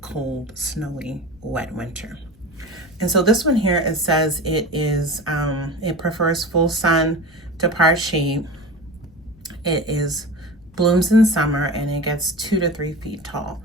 cold, snowy, wet winter. And so this one here, it says it is it prefers full sun to part shade. It is blooms in summer, and it gets 2 to 3 feet tall.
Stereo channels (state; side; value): noise; left; rumble, 26 dB below the sound